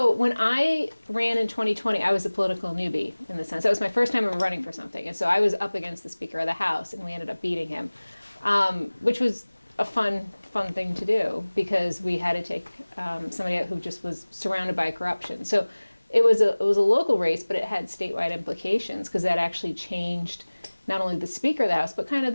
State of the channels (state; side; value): inverted; both; correlation -1.00